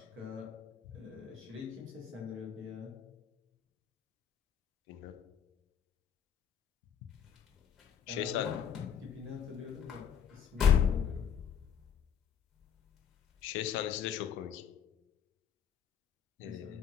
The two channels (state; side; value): quieter; right; 8.1 dB